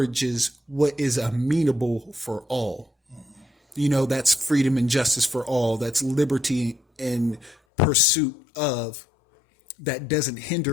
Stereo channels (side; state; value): right; drops out; at 7.6 s